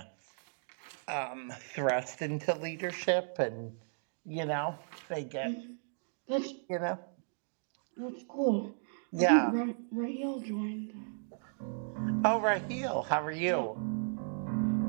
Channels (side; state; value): left; silent; digital silence